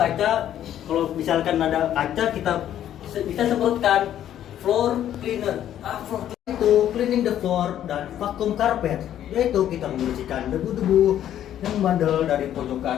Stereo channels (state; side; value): quieter; right; 11.1 dB